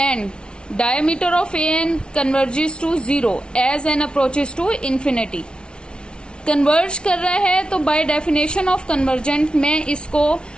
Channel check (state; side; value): late; right; 0.056 ms